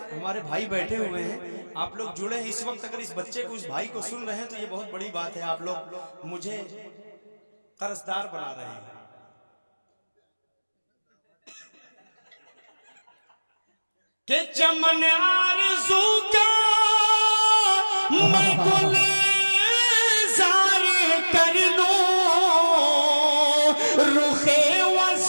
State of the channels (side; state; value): both; inverted; correlation -1.00